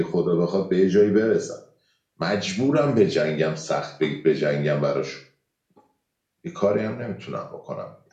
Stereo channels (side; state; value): both; identical; correlation 1.00